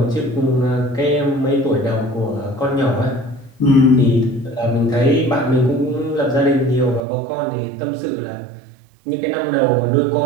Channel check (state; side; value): drops out; left; at 7.0 s